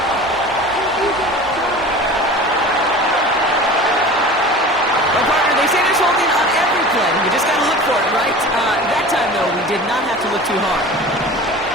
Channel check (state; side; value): normal; both; correlation 0.37